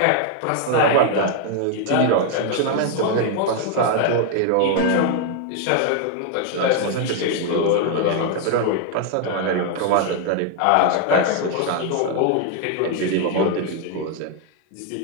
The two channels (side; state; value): both; different; correlation 0.00